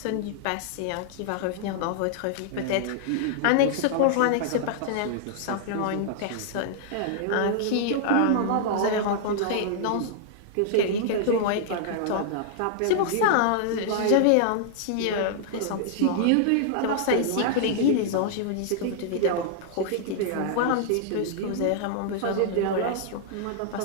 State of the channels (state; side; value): different; both; correlation -0.01